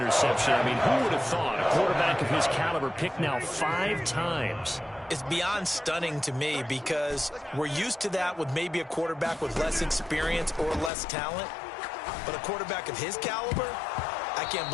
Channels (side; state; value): right; drops out; at 10.9 s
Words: I mean, who would have thought a quarterback of his caliber picked now 5 times? It's beyond stunning to me because we're used to that with maybe a quarterback with less experience or less talent. But a quarterback of his caliber, I can't